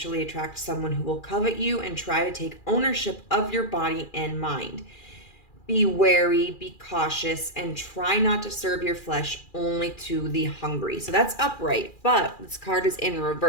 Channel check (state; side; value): late; right; 2.4 ms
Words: attract someone who will covet you and try to take ownership of your body and mind. Be wary, be cautious, and try not to serve your flesh only to the hungry. So that's upright, but this card is in